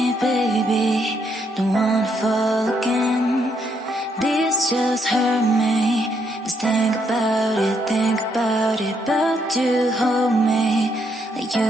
baby, don't wanna fall again. This just hurt me. Just think about it, but you hold me like you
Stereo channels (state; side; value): normal; both; correlation 0.74